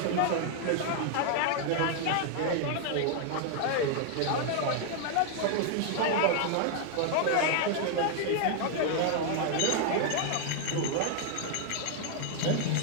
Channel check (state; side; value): different; both; correlation 0.00